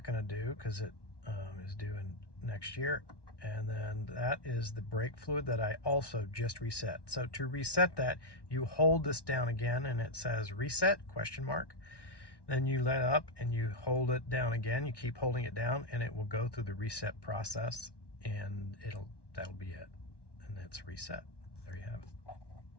going to do because it is due in next year. And then that is the brake fluid that I also just reset. So to reset that, you hold this down again, and it says reset, question mark. Then you let up and you hold it down again. You keep holding it down, and it will go through the reset process, and that'll be it. And it's reset. There you have it.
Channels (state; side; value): late; right; 1.1 ms